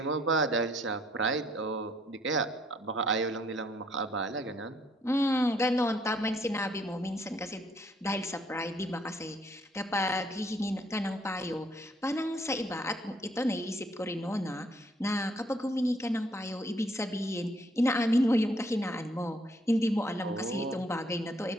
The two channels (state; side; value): normal; both; correlation 0.67